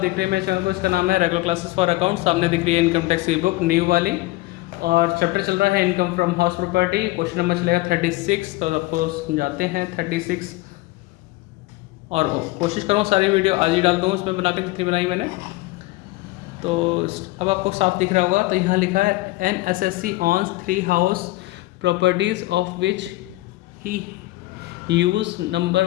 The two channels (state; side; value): quieter; right; 19.6 dB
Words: रहे हैं मेरे चैनल को। इसका नाम है रेगुलर क्लासेस फॉर अकाउंट। सामने दिख रही है इनकम टैक्स की बुक न्यू वाली, और चैप्टर चल रहा है income from house property. Question number चलेगा 36। तो आपको समझाते हैं 36, और कोशिश करूँ सारी वीडियो आज ही डाल दूँ उसमें बना के जितनी बनाई मैंने। तो अब आपको साफ दिख रहा होगा। तो यहाँ लिखा है N SSC owns 3 house properties of which he use